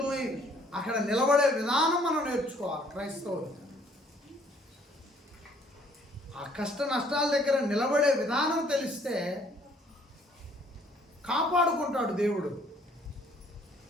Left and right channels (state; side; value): normal; both; correlation 0.61